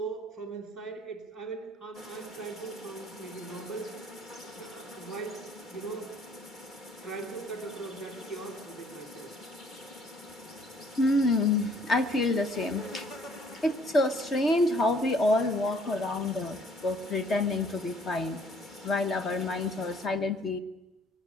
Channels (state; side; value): normal; both; correlation 0.60